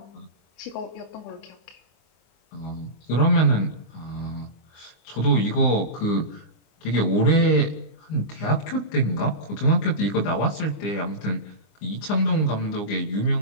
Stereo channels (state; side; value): late; right; 24 ms